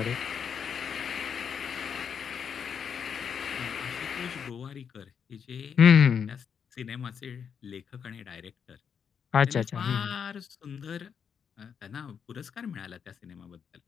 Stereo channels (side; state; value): right; quieter; 7.2 dB